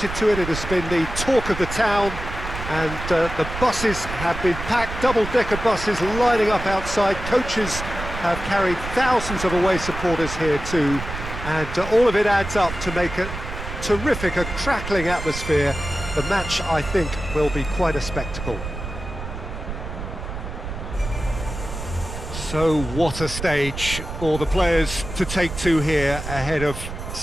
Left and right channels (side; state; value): right; noise; rumble, 8 dB below the sound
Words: to it. It has been the talk of the town, and the buses have been packed, double-decker buses lining up outside. Coaches have carried thousands of away supporters here too, and all of it adds up to make a terrific, a crackling atmosphere. The match, I think, will be quite a spectacle. So what a stage for the players to take to here ahead of